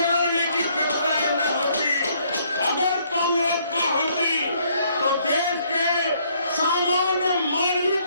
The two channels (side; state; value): both; inverted; correlation -0.67